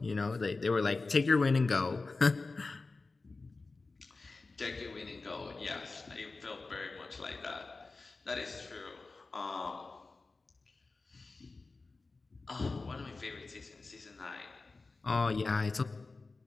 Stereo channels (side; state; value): right; quieter; 3.7 dB